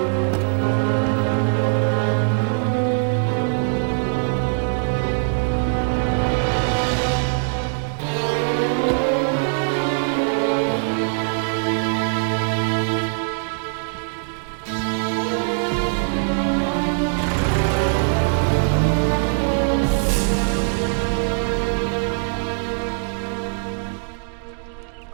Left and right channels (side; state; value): left; silent; 64 dB below the other